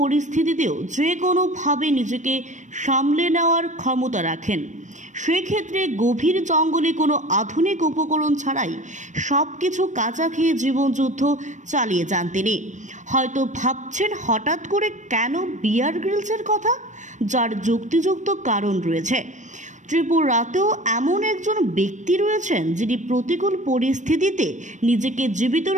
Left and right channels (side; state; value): left; late; 0.35 ms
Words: যে কোনোভাবে নিজেকে সামলে নেওয়ার ক্ষমতা রাখেন। সেক্ষেত্রে গভীর জঙ্গলে কোনো আধুনিক উপকরণ ছাড়াই সব কিছু কাঁচা খেয়ে জীবনযুদ্ধ চালিয়ে যান তিনি। হয়তো ভাবছেন হঠাৎ করে কেন বিয়ার গ্রিলসের কথা, যার যুক্তিযুক্ত কারণ রয়েছে। ত্রিপুরাতেও এমন একজন ব্যক্তি রয়েছেন যিনি প্রতিকূল পরিস্থিতিতে নিজেকে জীবিত